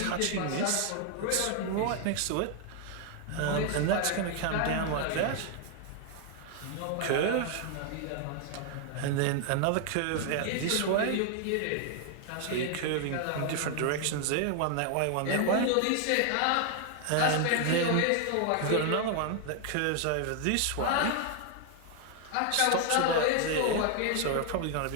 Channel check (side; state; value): both; different; correlation 0.00